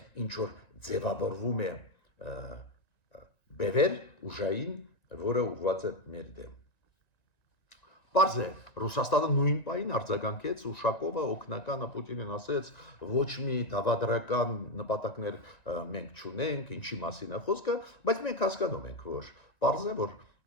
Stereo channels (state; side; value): late; right; 1.9 ms